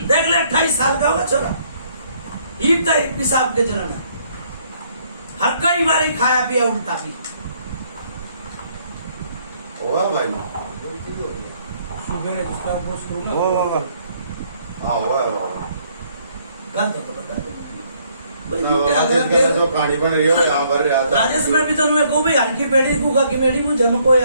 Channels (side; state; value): both; inverted; correlation -0.67